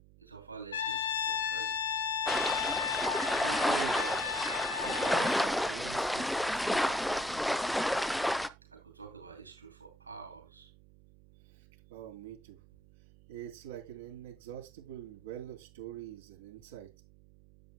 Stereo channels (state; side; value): noise; right; hum, 24 dB below the sound